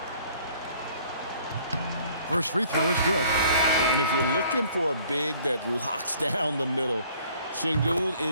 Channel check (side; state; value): both; inverted; correlation -0.57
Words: First free throw is good. And if you're looking for a big that locks down the middle, Şengün